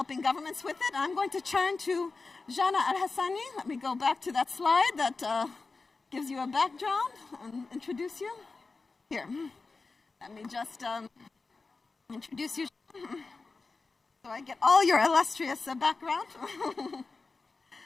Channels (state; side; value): quieter; right; 4.0 dB